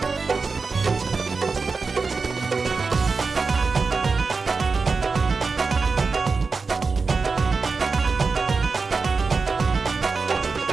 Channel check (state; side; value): quieter; left; 4.5 dB